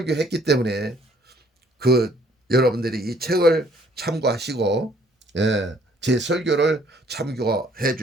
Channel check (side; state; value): both; normal; correlation 0.62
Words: 때문에 여러분들이 이 책을 참고하시고 제 설교를 참고해